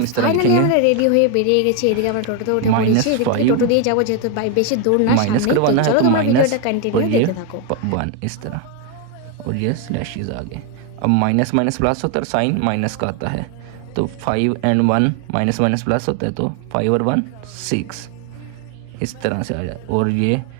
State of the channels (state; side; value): different; both; correlation 0.01